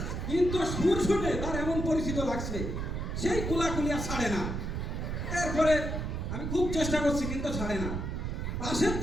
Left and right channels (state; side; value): noise; right; rumble, 3 dB below the sound